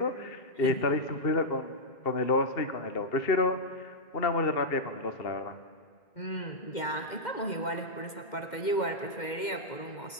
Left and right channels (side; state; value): right; late; 2.1 ms